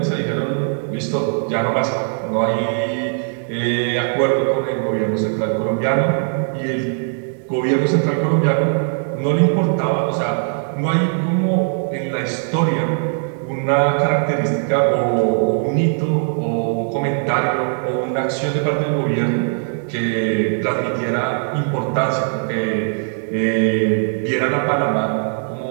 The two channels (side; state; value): left; silent; 60 dB below the other